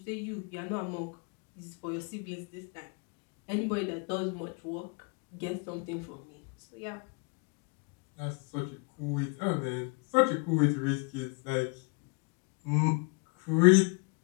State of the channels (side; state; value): right; quieter; 33.0 dB